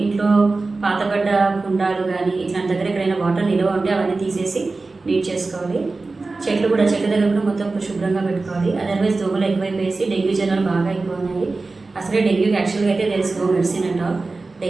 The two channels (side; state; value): left; quieter; 3.6 dB